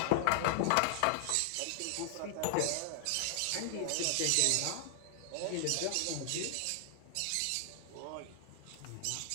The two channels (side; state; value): both; different; correlation 0.00